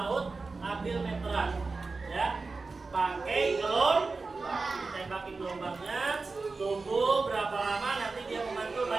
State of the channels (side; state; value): left; quieter; 4.0 dB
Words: ambil meteran, ya. Pakai gelombang, tembakin gelombangnya, tunggu berapa lama nanti dia memantul